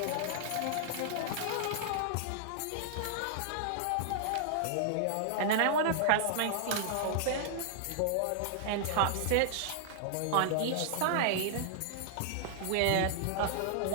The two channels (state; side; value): different; both; correlation -0.01